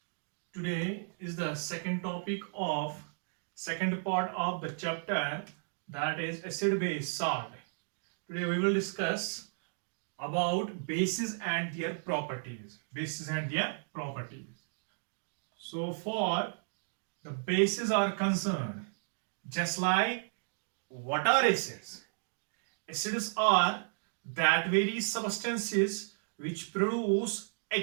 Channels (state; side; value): silent; left; digital silence